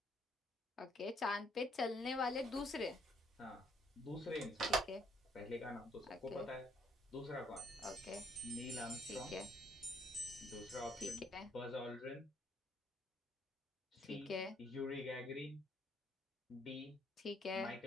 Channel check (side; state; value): both; normal; correlation 0.67